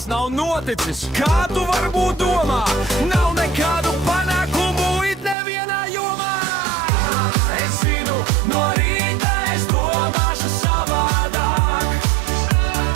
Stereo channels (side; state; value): left; drops out; at 5.4 s